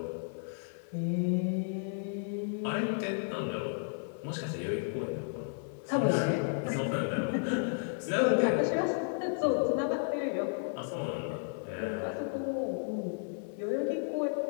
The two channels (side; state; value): right; silent; 56 dB below the other